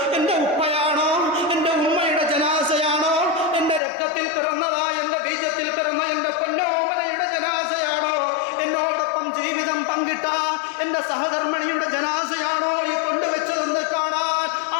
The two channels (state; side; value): drops out; right; at 3.8 s